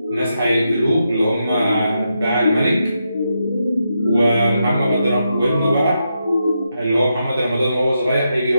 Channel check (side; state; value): both; inverted; correlation -0.84